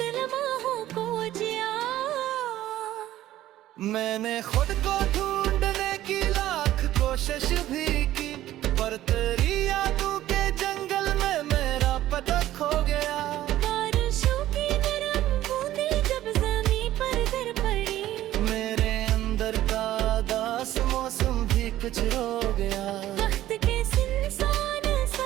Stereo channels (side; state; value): left; quieter; 14.0 dB